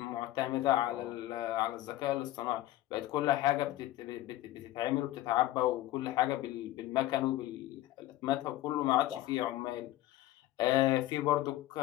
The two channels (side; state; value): right; quieter; 15.3 dB